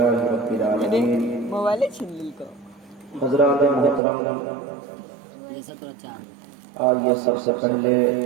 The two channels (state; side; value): drops out; left; at 4.0 s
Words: رب العالمين۔ حضرات محترم، آئیے سب سے پہلے